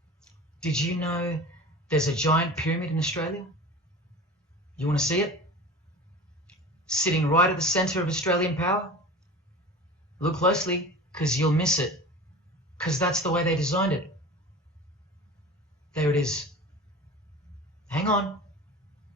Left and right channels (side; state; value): both; normal; correlation 0.36